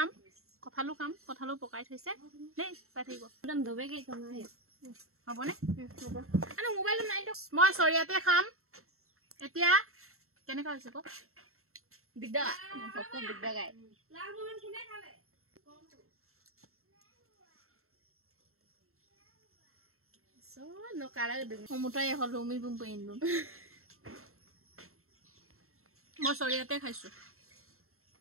কঠালু খাম কঠালু পকাই থৈছে দেই চাই থাকিব একদম ধবেকে কমাই হবনে হ'ব আনো মোবাইলটো নাই মই সৰিয়াতে খাম এতিয়া কেনেকা হৈছে ক দিগদা পকক দিগদা গায় লাল মোহন কোনে খালে সো নকাৰা সমুটাই হল উমি বুম পেইনলো মই সৰিয়াতে খাইছো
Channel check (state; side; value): late; left; 0.62 ms